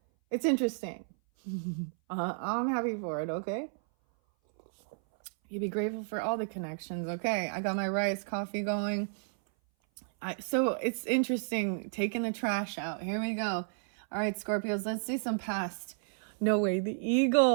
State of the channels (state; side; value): silent; left; 57 dB below the other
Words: it's interesting. I'm happy for it, okay? You be grateful for all the connections, okay? I got my rice coffee going. So it's interesting, taking the trash out. Here we go. All right, Scorpios, let's see some past. No way, the